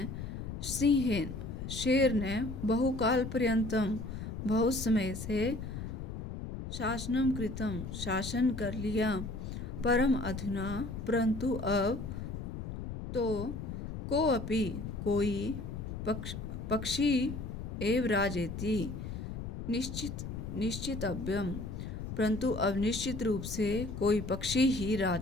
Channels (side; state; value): left; noise; rumble, 7 dB below the sound